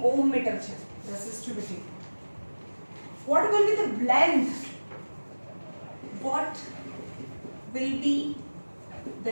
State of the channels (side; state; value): both; inverted; correlation -1.00